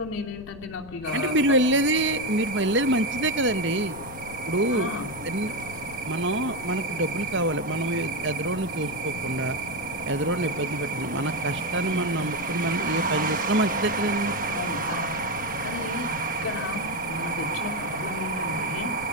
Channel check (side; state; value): left; noise; rumble, 17 dB below the sound